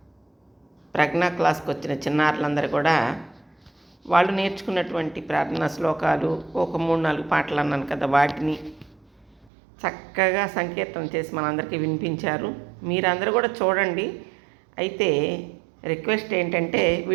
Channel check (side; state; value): left; drops out; at 9.5 s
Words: ప్రజ్ఞా క్లాస్కి వచ్చిన చిన్నారులందరూ కూడా వాళ్ళు నేర్చుకున్నటువంటి ప్రార్థనా శ్లోకాలు ఒక 3-4 పాటలు అన్నాను కదా, వాటిని చక్కగా సంకీర్తన చేసి మనందరికీ వినిపించారు. మీరందరూ కూడా చూడండి. అయితే రిక్వెస్ట్ ఏంటంటే